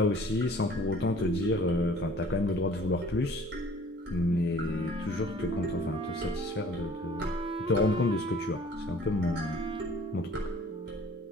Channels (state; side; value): normal; both; correlation 0.51